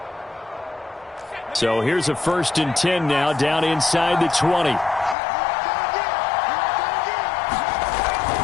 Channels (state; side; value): drops out; right; at 5.2 s